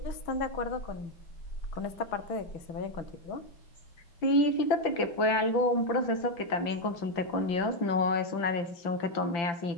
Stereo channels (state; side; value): late; right; 5.8 ms